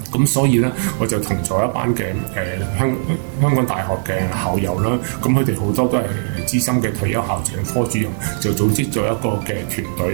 咁所以咧，我就同咗一班嘅香港大學嘅校友啦，咁佢哋好多都係資深嘅退休校長、科主任，就組織咗一個嘅團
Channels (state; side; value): silent; left; 65 dB below the other